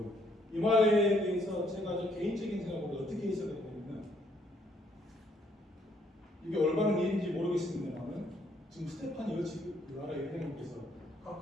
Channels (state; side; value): normal; both; correlation 0.69